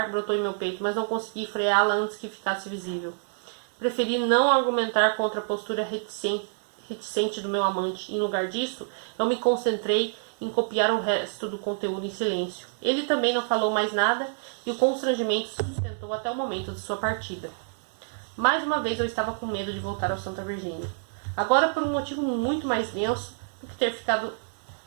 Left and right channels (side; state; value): left; silent; digital silence